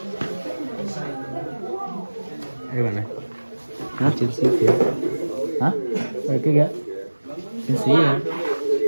Đây bạn này. Hả? Chiến sĩ phía. Hả? Đây cái kìa. Chiến sĩ hả?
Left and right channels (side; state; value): both; inverted; correlation -1.00